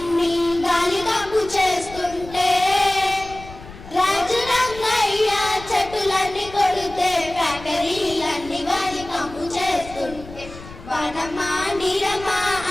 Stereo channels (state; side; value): noise; left; rumble, 16 dB below the sound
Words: గాలి కంపు చేస్తుంటే, రాజు రంగయ్య చెట్టులన్నీ కొడితే ఫ్యాక్టరీలన్నీ గాలి కంపు చేస్తుంటే, వనమా నీరమా